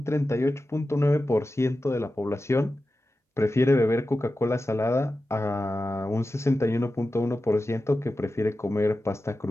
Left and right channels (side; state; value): both; normal; correlation 0.93